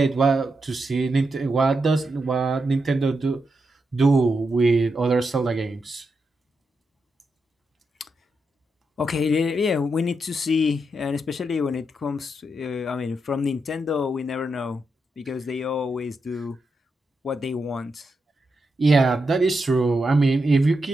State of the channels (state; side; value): normal; both; correlation 0.85